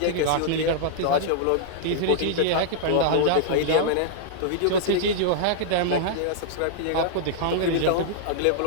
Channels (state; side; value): different; both; correlation -0.01